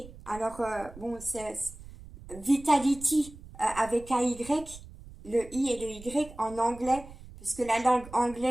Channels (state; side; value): noise; right; rumble, 17 dB below the sound